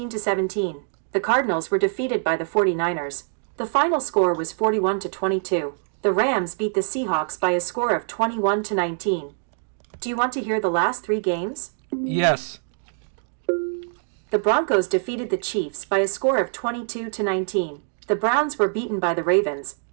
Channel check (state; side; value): silent; left; digital silence